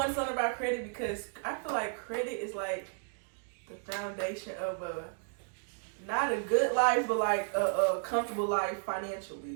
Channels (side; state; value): left; silent; digital silence